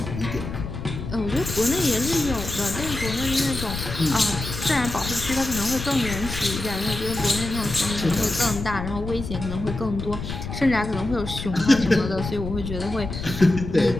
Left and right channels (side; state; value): left; noise; rumble, 7 dB below the sound